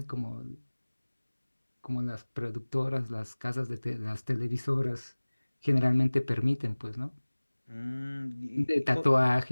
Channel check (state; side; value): inverted; both; correlation -1.00